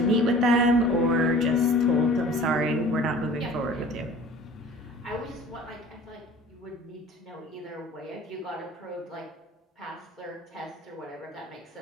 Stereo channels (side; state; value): both; normal; correlation 0.45